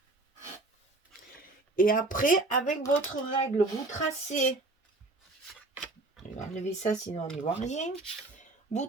Et après, avec votre règle, vous tracez. Je vais enlever ça, sinon on n'y voit rien. Vous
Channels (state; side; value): quieter; left; 3.0 dB